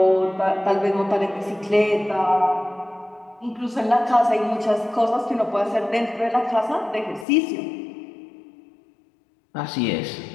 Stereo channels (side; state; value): right; drops out; at 7.2 s